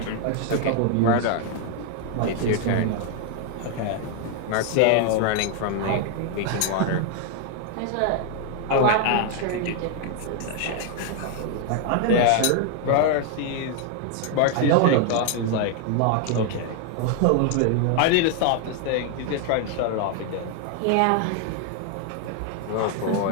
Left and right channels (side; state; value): both; different; correlation 0.00